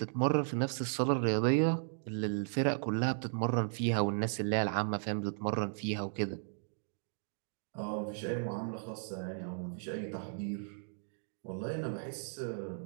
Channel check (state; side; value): silent; left; digital silence